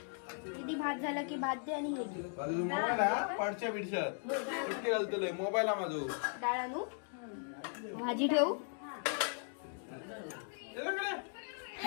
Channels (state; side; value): silent; right; 53 dB below the other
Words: किती भात झाला की भात दे. आणि हे घे. मोबाईल माझो डाळ आणू, भाजी ठेवू.